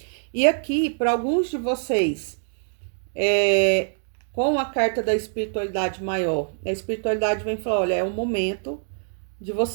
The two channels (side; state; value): left; silent; digital silence